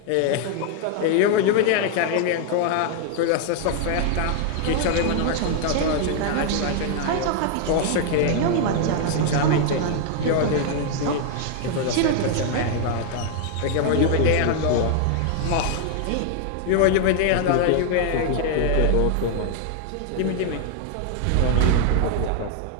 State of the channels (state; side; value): different; both; correlation 0.00